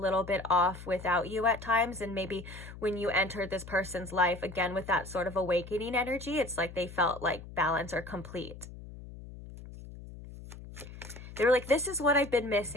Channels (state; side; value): noise; left; hum, 14 dB below the sound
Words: bit off without you at times. And maybe when you entered this person's life, again, with that sort of awakening energy, it's like they felt like balance or complete. They were like, this is what I've been